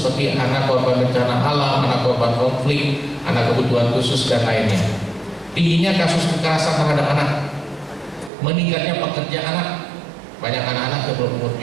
seperti anak korban bencana alam, anak korban konflik, anak kebutuhan khusus dan lainnya. Tingginya kasus kekerasan terhadap anak, meningkatnya pekerja anak. Banyak anak-anak yang berumur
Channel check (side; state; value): left; drops out; at 8.3 s